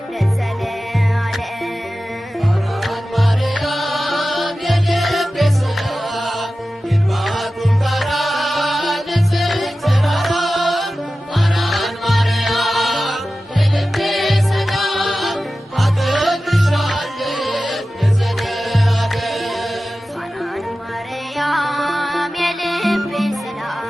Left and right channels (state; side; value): normal; both; correlation 0.94